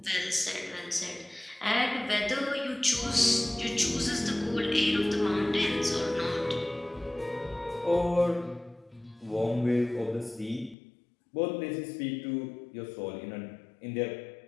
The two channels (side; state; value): right; drops out; at 10.8 s